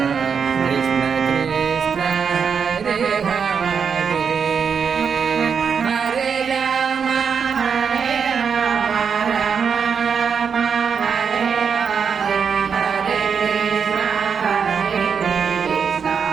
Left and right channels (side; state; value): left; quieter; 6.4 dB